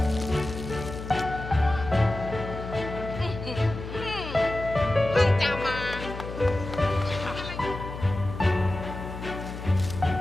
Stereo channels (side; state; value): left; noise; hum, 9 dB below the sound